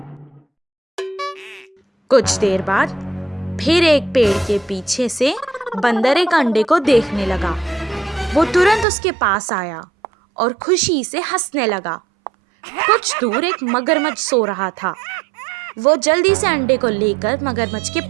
कुछ देर बाद फिर एक पेड़ के पीछे से बंदर एक अंडे को देखने लगा। वो तुरंत उसके पास आया और खुशी से हंसने लगा। कुछ दूर एक मगरमच्छ सो रहा था। वो जल्दी से अंडे को लेकर मगरमच्छ के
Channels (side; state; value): left; drops out; at 8.8 s